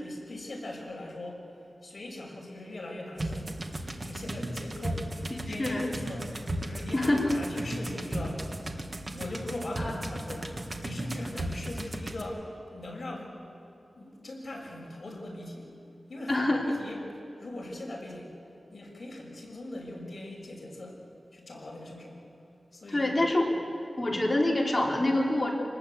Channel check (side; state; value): both; normal; correlation 0.95